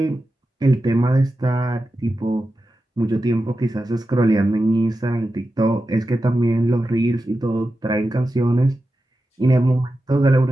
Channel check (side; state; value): both; normal; correlation 0.91